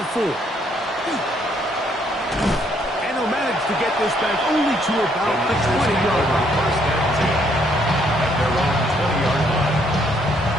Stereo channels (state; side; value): normal; both; correlation 0.69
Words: 4. And they'll manage to get this back only to about the 20-yard line. First and 10 at their own 20-yard line.